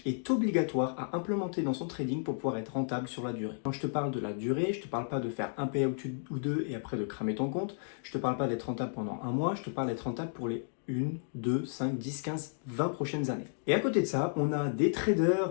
est obligatoire à implémenter dans son trading pour pouvoir être rentable sur la durée. Quand je te parle de la durée, je ne te parle pas de faire un payout ou deux et après de cramer ton compte. Je ne te parle pas d'être rentable pendant un mois, je te parle d'être rentable pour les 1, 2, 5, 10, 15, 20 prochaines années. Et à côté de ça, on a des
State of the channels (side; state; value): right; silent; digital silence